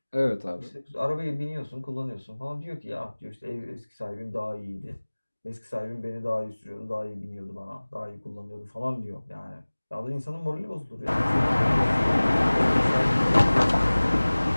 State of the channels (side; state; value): both; inverted; correlation -1.00